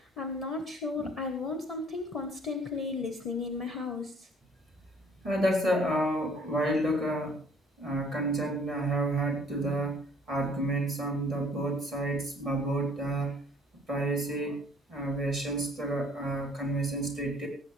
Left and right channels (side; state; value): both; normal; correlation 0.57